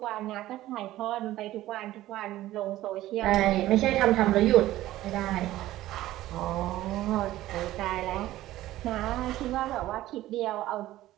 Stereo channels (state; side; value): quieter; left; 15.3 dB